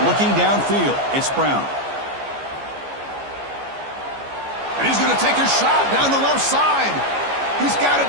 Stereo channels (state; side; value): late; left; 14 ms